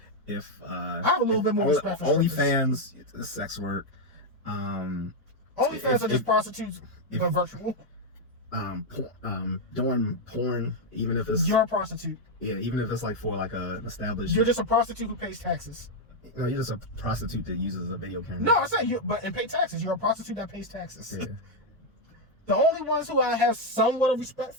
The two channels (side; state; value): both; normal; correlation 0.02